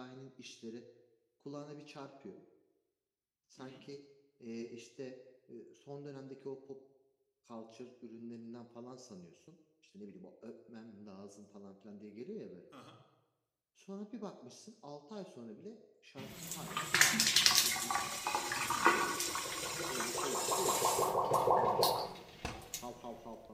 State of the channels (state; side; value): identical; both; correlation 1.00